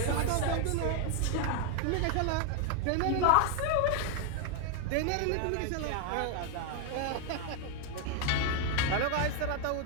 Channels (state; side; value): different; both; correlation 0.00